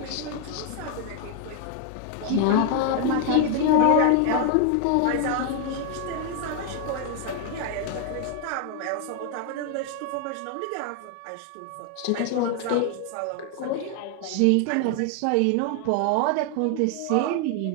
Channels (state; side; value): different; both; correlation 0.00